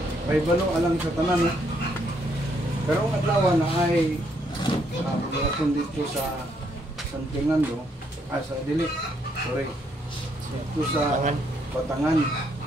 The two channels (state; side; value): normal; both; correlation 0.72